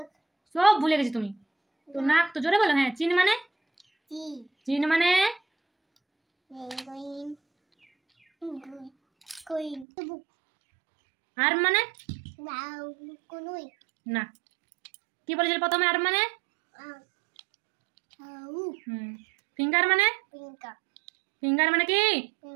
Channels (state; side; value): drops out; left; at 9.9 s